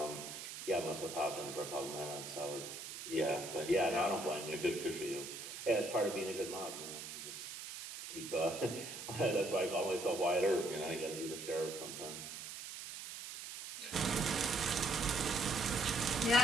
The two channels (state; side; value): noise; right; hiss, 9 dB below the sound